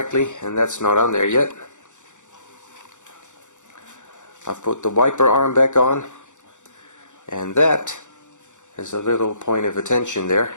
and that's not on there yet. I've put the wiper arm back on, and that is a little point of attention there,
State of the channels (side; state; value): right; late; 0.85 ms